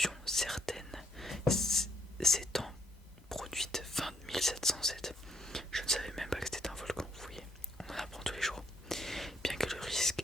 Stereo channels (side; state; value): both; normal; correlation 0.71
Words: certaine s'étant produite fin 1707. Je ne savais même pas que c'était un volcan, vous voyez.